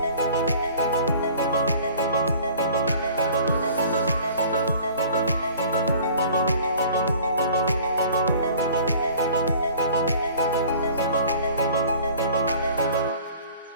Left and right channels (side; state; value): both; inverted; correlation -0.48